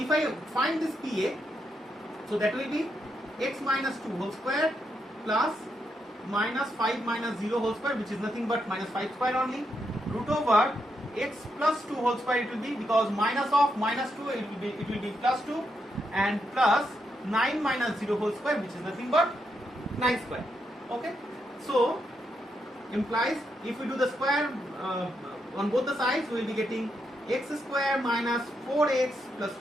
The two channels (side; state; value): both; normal; correlation 0.81